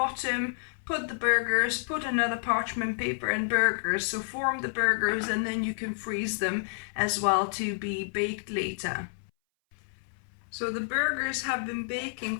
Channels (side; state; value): right; silent; 58 dB below the other